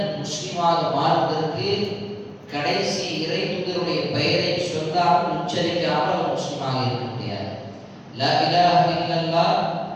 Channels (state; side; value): identical; both; correlation 1.00